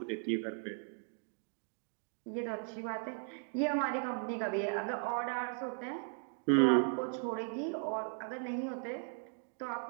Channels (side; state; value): left; silent; 53 dB below the other